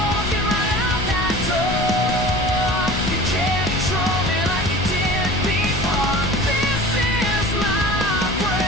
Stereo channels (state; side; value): noise; left; rumble, 6 dB below the sound